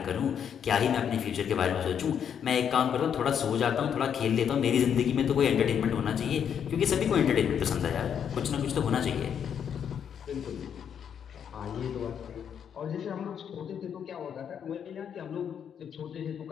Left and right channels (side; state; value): right; quieter; 8.2 dB